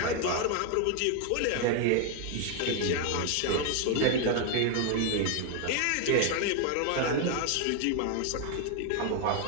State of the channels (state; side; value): different; both; correlation 0.01